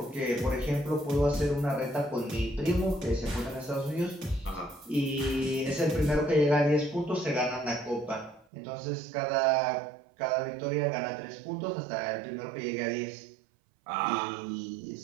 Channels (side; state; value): left; drops out; at 8.5 s